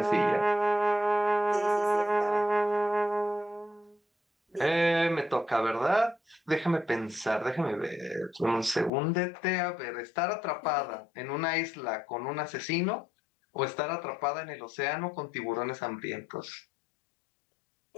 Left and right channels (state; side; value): drops out; right; at 8.9 s